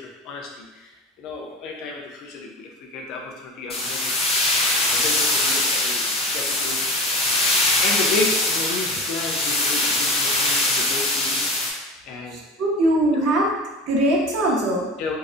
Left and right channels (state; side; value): normal; both; correlation 0.31